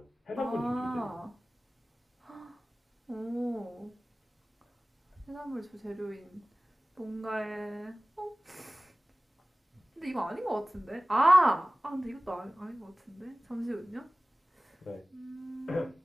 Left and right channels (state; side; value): normal; both; correlation 0.97